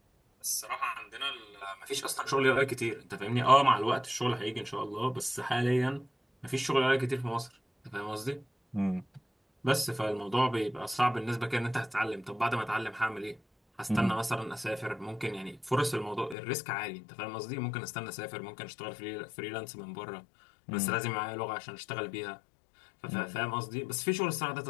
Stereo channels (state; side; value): drops out; right; at 16.4 s